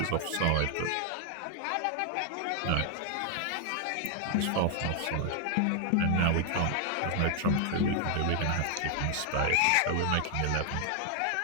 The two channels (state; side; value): different; both; correlation 0.00